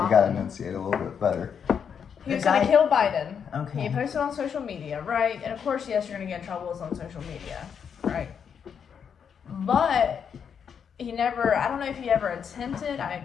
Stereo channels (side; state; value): right; quieter; 7.3 dB